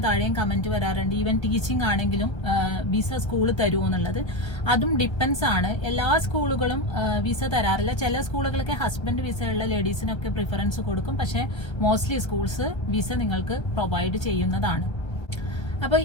താഴെയും കമന്റ് വരാറുണ്ട്, ഈവൻ ടീച്ചിങ് ആണെങ്കിലും വിസ സ്കൂൾ തരുമോ എന്നുള്ളത്. അതും ഡിപ്പെൻസ് ആണ്. എല്ലാ സ്കൂളുകളും വിസ തരാറില്ല. ചില സ്കൂളുകളൊക്കെ ഹസ്ബൻഡ് വിസ ഉള്ള ലേഡീസിനൊക്കെ പ്രിഫറൻസ് കൊടുക്കും. പക്ഷെ മോസ്റ്റ്ലി സ്കൂൾസ് വിസ നിങ്ങൾക്ക് പ്രൊവൈഡ് ചെയ്യുന്നതാണ്. അപ്പൊ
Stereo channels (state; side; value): late; right; 1.3 ms